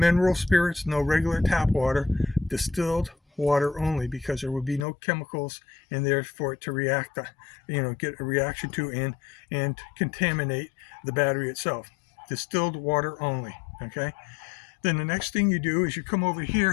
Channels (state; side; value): drops out; right; at 4.9 s